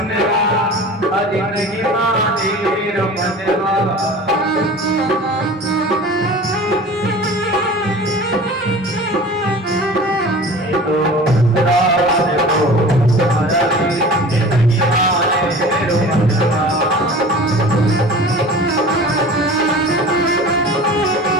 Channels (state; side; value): normal; both; correlation 0.39